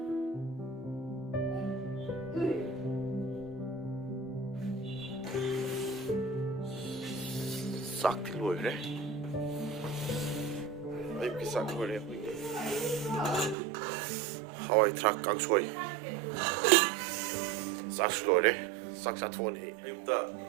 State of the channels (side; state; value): left; drops out; at 13.6 s